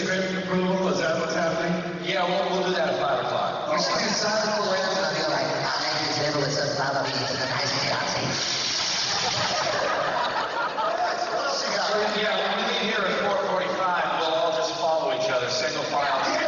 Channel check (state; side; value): identical; both; correlation 1.00